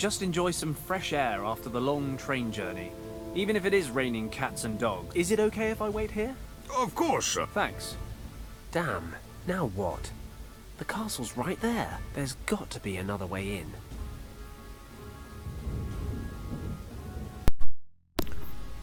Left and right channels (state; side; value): identical; both; correlation 1.00